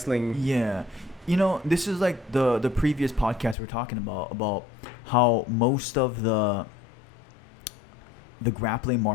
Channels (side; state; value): right; drops out; at 3.6 s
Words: Yeah, you know, this is like the previous podcast we're talking about how most of the grappling